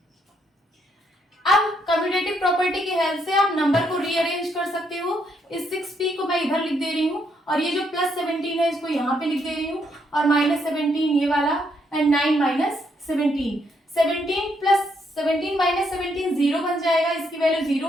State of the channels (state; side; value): normal; both; correlation 0.75